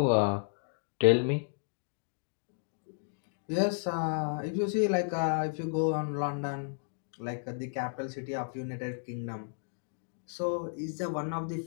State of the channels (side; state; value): right; silent; digital silence